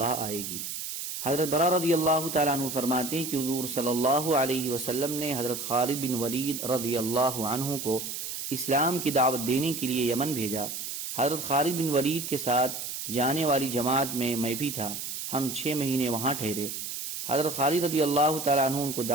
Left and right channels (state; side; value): noise; right; hiss, 6 dB below the sound